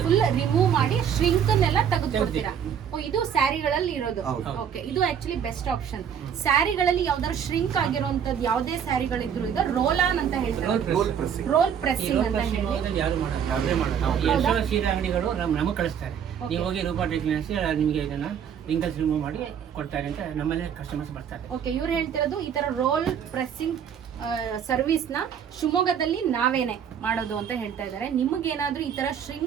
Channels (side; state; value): left; quieter; 8.1 dB